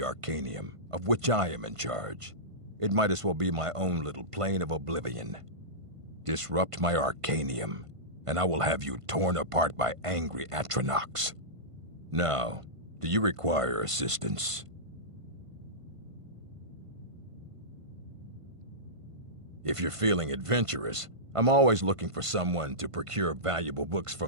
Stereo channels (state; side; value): late; left; 1.5 ms